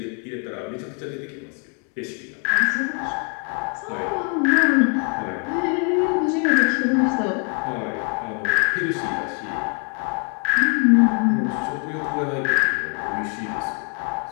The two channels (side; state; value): right; quieter; 38.9 dB